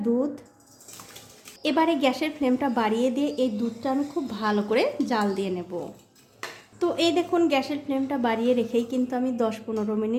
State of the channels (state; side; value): identical; both; correlation 1.00